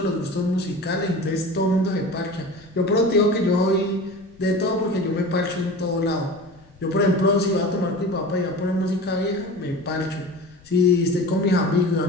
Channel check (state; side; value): noise; left; rumble, 27 dB below the sound